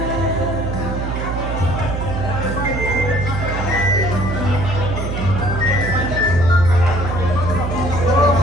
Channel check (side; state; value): right; noise; hum, 4 dB below the sound